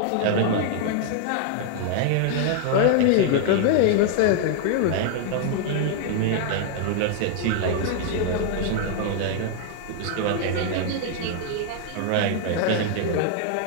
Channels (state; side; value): different; both; correlation 0.00